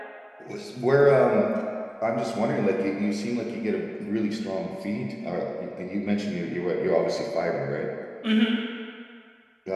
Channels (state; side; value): identical; both; correlation 1.00